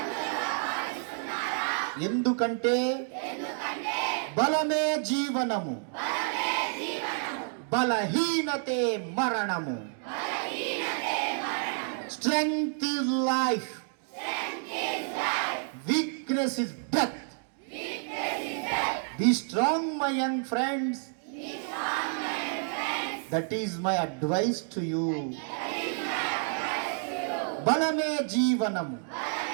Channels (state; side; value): silent; left; 58 dB below the other